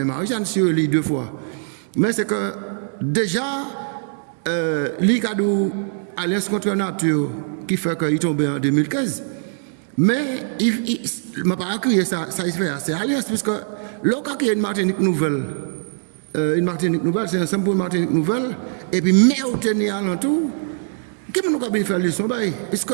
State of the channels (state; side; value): silent; left; 64 dB below the other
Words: Marie-Jeanne sur les 2 fois. Mais c'est que déjà, l'Icadou, Alliance contre la nature, qui fait qu'il est tombé en 2015. Mais il m'a pas crié ça il fait c'est Alliance, puisque l'autre qui a une Martinique nouvelle, c'est ensemble pour une Martinique nouvelle, et puis mais au tenir à l'entour, qui nous a bien fait leçon, puisque